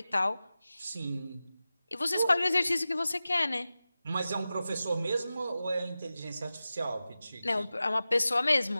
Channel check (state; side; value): inverted; both; correlation -0.94